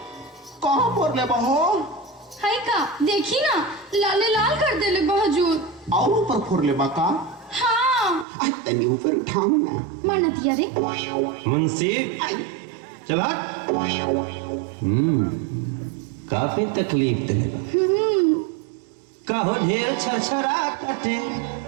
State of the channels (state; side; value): drops out; left; at 8.2 s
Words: कहाँ पर ले बहो? हाय का देखी ना, लाले लाल कर देले बहजूर। और ऊपर फोड़ ले बाका। हाँ आई तनी ऊपर उठाओ ना। माना दिया रे। मुंशी चला। काफी तकलीफ देगा। कहो ढेर छरछरा कटे।